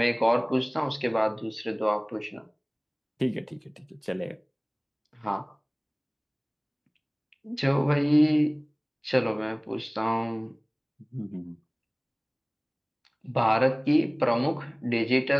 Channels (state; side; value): identical; both; correlation 1.00